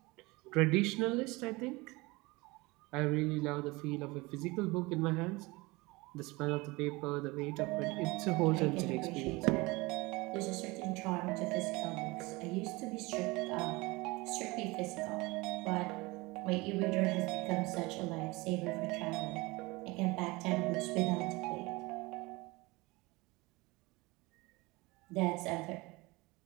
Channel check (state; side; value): quieter; left; 23.3 dB